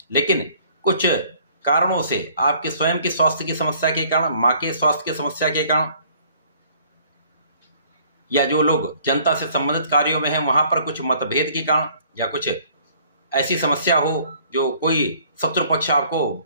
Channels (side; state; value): both; inverted; correlation -0.58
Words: लेकिन कुछ कारणों से आपके स्वयं के स्वास्थ्य की समस्या के कारण, मां के स्वास्थ्य की समस्या के कारण, या जो लोग जनता से संबंधित कार्यों में हैं वहां पर कुछ मतभेद के कारण, या कुछ ऐसी समस्या हो जो कोई शत्रु पक्ष आपको